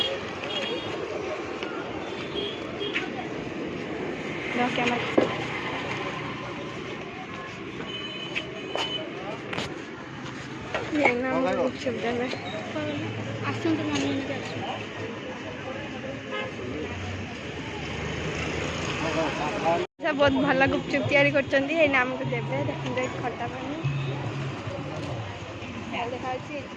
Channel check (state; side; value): identical; both; correlation 1.00